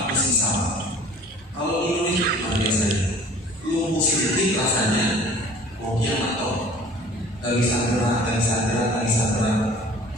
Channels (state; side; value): normal; both; correlation 0.48